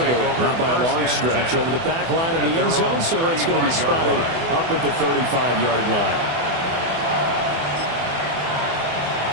not by a long stretch, over the back line of the end zone, so it's going to be spotted up at the 35-yard line.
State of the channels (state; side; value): late; left; 24 ms